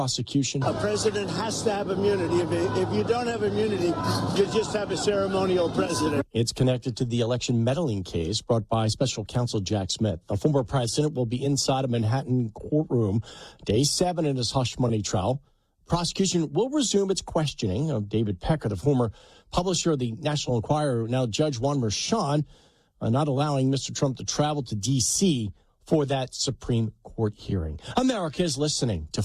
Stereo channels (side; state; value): both; identical; correlation 1.00